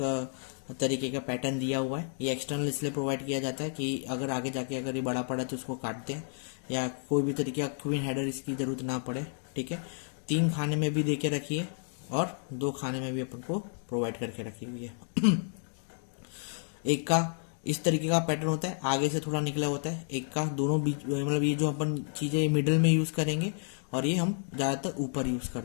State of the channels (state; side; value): silent; right; 57 dB below the other